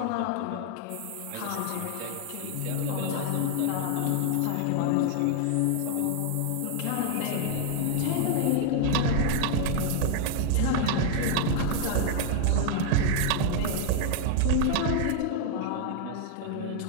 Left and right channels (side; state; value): both; different; correlation 0.00